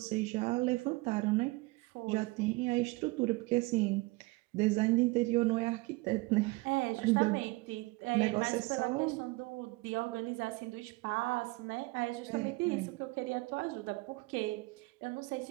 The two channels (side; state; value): left; quieter; 23.7 dB